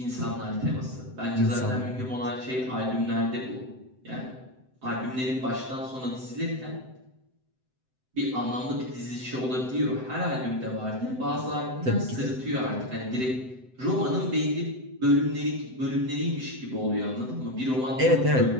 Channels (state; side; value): late; left; 7.8 ms